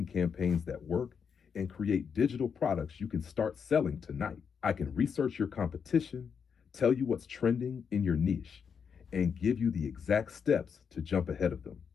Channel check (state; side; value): quieter; right; 6.6 dB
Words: campaigns that work, and create digital products you can start selling tonight. I can research your competition, tell you what's trending in your niche, and give you the exact steps to jump ahead of them.